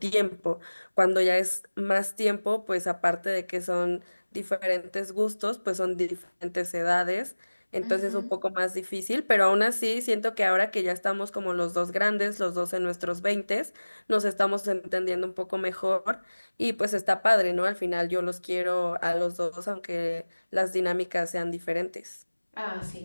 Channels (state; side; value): inverted; both; correlation -1.00